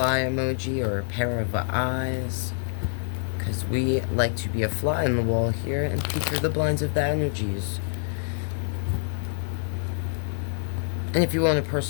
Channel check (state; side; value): silent; right; 61 dB below the other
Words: emoji or a pair of eyes, because we like to be a fly in the wall here and peek through the blinds of the energies. And if you want a